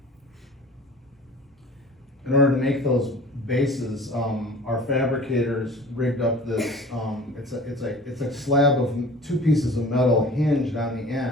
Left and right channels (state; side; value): normal; both; correlation 0.43